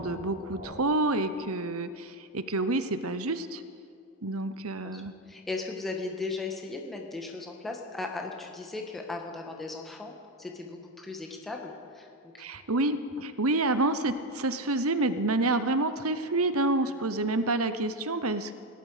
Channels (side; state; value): both; normal; correlation 0.11